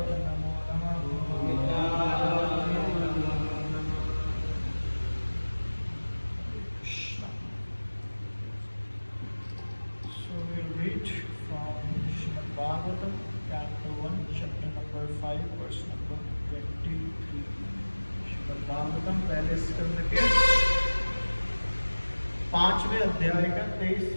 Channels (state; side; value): inverted; both; correlation -1.00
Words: Bhagavatam, Canto 1, Chapter number 5, verse number 23. Shrimad Bhagavatam पहले स्कंद के 5वें अध्याय का